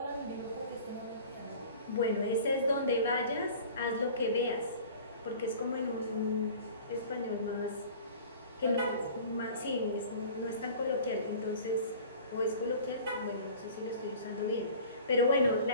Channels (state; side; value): inverted; both; correlation -0.43